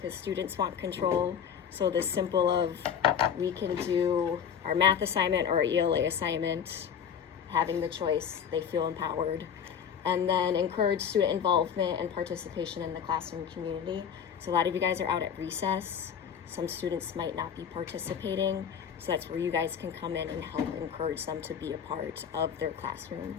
students want control. So the simple of we can do our math assignment or our ELA assignment, having the choice, they feel empowered. And then encourage student involvement and participation in the classroom community. So a lot of you guys are out at recess. Some students might not be participating. So that's where you guys can come in and help encourage them to be a part of their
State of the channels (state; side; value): quieter; right; 7.8 dB